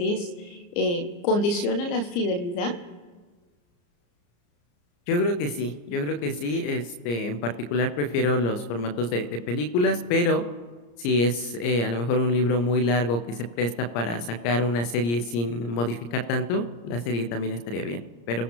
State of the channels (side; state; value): right; late; 34 ms